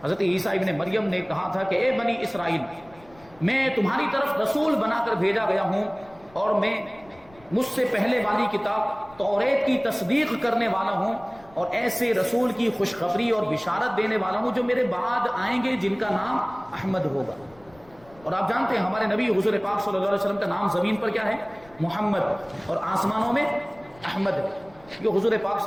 حضرت عیسیٰ ابن مریم نے کہا تھا کہ اے بنی اسرائیل، میں تمہاری طرف رسول بنا کر بھیجا گیا ہوں اور میں مجھ سے پہلے والی کتاب توریت کی تصدیق کرنے والا ہوں اور ایسے رسول کی خوشخبری اور بشارت دینے والا ہوں جو میرے بعد آئیں گے جن کا نام احمد ہوگا. اور آپ جانتے ہیں ہمارے نبی حضور پاک صلی اللہ علیہ وسلم کا نام زمین پر کیا ہے؟ محمد، اور آسمانوں میں احمد ہے. یہ حضور پاک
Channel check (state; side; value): noise; left; rumble, 26 dB below the sound